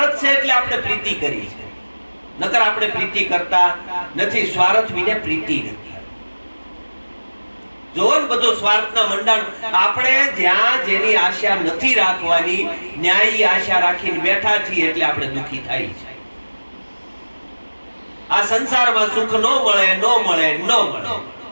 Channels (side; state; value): both; inverted; correlation -1.00